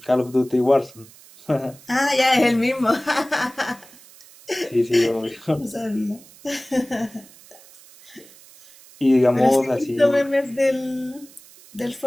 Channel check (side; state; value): right; noise; hiss, 23 dB below the sound